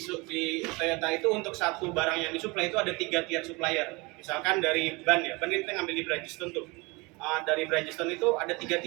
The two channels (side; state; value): left; quieter; 25.9 dB